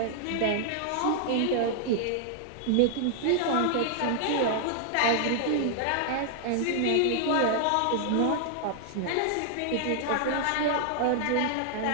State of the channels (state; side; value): different; both; correlation -0.01